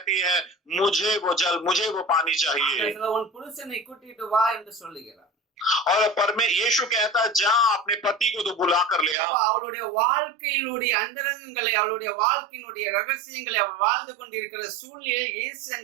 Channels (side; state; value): left; drops out; at 9.2 s